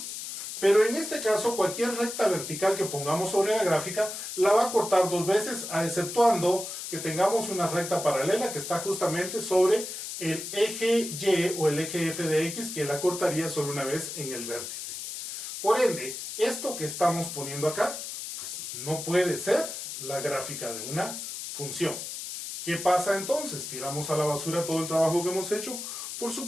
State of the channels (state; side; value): noise; left; hiss, 7 dB below the sound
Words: Pero en este caso, cualquier recta vertical que pongamos sobre la gráfica la va a cortar dos veces, exceptuando que tengamos una recta paralela que está justamente sobre el eje Y o el eje F de X, que la cortaría solo una vez en el vértice. Por ende, esto que estamos poniendo acá, pues no puede ser la gráfica de una función. ¿Qué pasa entonces? ¿Tiramos a la basura todo el trabajo que hemos hecho? Por